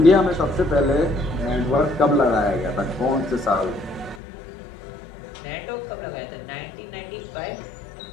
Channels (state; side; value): drops out; right; at 4.2 s